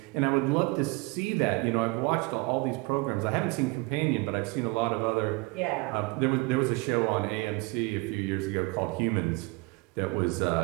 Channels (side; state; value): left; quieter; 25.7 dB